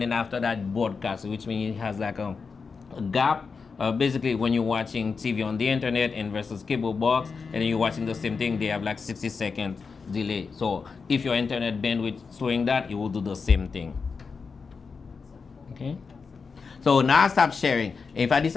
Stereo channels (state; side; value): quieter; right; 5.1 dB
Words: then after that broadcast, which means it has like a gap. Basically, when you're watching TV on the internet and versus cable box, and then you're watching the same thing, they have like 60-second delay. So if your internet bandwidth is showing that, it will do the same thing. Okay. So now I stop sharing. If I